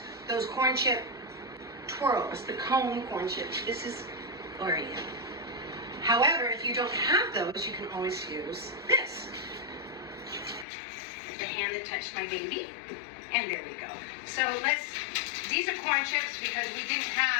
those corn chip twirls, the cone corn chips. This is Oreo. However, if you don't have those, you can always use this. The hand that touched my baby. And there we go. So these are corn chips because we didn't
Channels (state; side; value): drops out; right; at 10.7 s